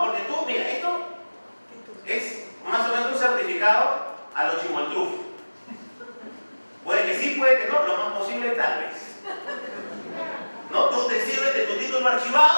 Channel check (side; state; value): both; inverted; correlation -1.00